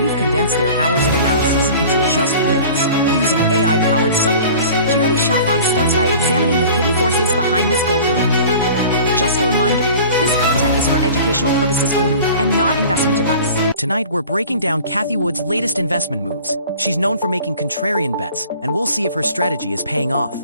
condensed their hours of analysis into just minutes using AI-powered summaries. Jeremy Saffron starts by examining the hidden forces behind this gold boom. Just a reminder, this content is for educational purposes only and not investment advice. Tonight, we're breaking down Cathie Wood's latest investment moves. She's known for making contrarian bets, and we'll see if her strategy is paying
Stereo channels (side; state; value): both; inverted; correlation -0.43